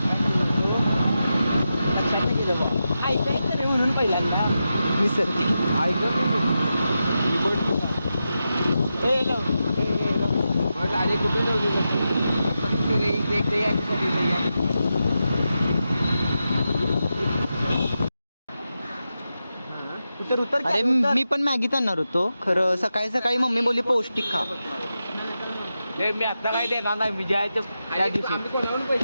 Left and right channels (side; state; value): both; inverted; correlation -0.89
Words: ऐकायचं रे म्हणून पहिल्यांदा विसरते गाडी कुठे उतर उतर अरे मी पण मॅगीच आणणार होतो खरं सकाळी सकाळी मम्मी बोलली पौष्टिक खा मी आता काय देणार नाही मी द्यायचं त्या दिवशी